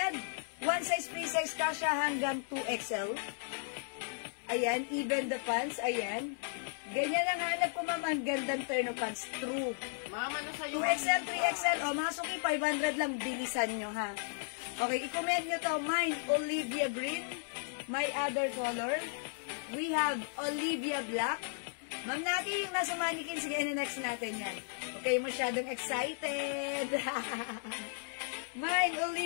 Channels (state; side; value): silent; right; digital silence